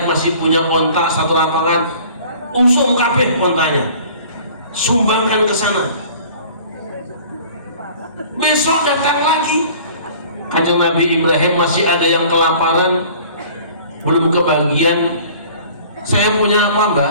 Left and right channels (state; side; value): inverted; both; correlation -0.49